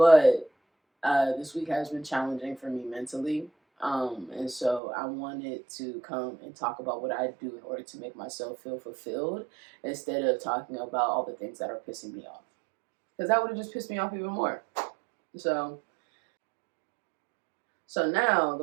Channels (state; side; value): drops out; left; at 4.8 s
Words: this week has been challenging for me mentally. And so I wanted to come and talk about what I do in order to make myself feel fulfilled instead of talking about all the things that are pissing me off. Because that would have just pissed me off even more. So, so now